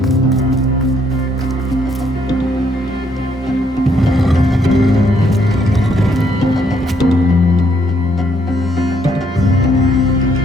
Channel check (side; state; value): both; normal; correlation 0.70